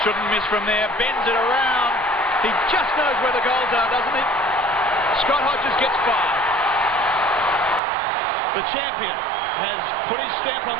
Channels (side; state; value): left; drops out; at 7.8 s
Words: Shouldn't miss from there. Bends it around. He just knows where the goals are, doesn't he? Scott Hodges gets 5. The champion has put his stamp on